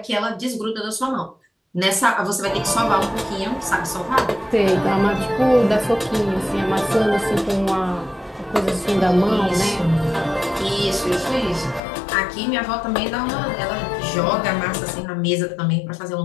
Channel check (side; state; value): right; drops out; at 11.8 s